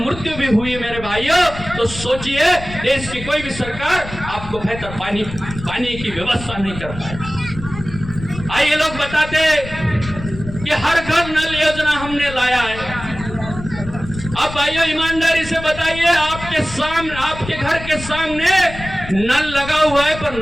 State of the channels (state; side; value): noise; left; rumble, 12 dB below the sound